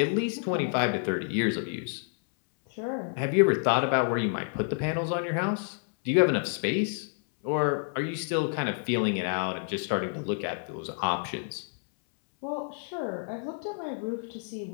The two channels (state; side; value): silent; right; 59 dB below the other